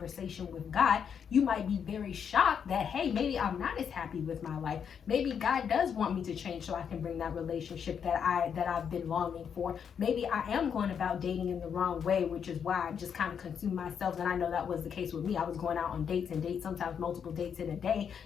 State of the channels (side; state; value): right; quieter; 7.4 dB